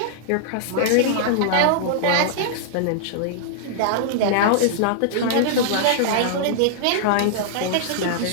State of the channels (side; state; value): both; different; correlation -0.01